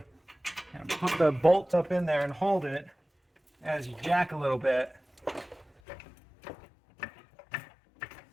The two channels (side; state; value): right; drops out; at 5.7 s